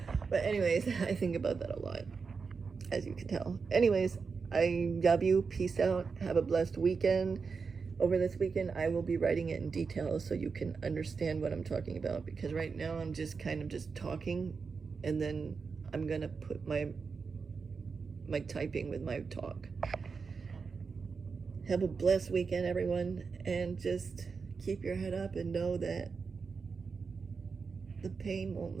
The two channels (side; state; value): left; quieter; 5.1 dB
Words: But anyways, I think about that a lot, as you can tell. Anyways, I love you. Peace out. Have a blessed weekend. Over this weekend, I will be writing it in detail so you can understand what I'm talking about, because right now I'm just kind of just talking, and then I'm going to put my typing with my talk. Have a blessed weekend, everyone, and just keep your head up and know that the pain won't